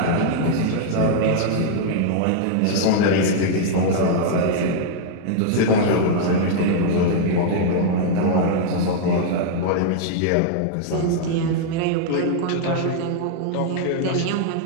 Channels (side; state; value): both; different; correlation -0.01